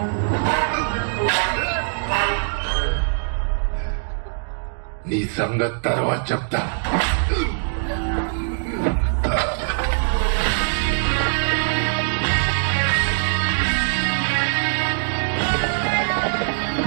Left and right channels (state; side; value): silent; left; digital silence